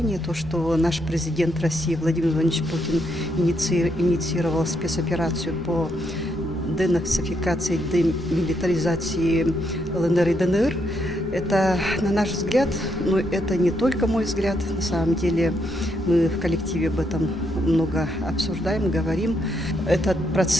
то, что наш президент России Владимир Владимирович Путин инициировал спецоперацию по денацификации, демилитаризации ЛНР и ДНР, это, на наш взгляд, но это не только мой взгляд, на самом деле мы в коллективе об этом много обсуждаем, говорим. Этот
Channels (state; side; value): normal; both; correlation 0.77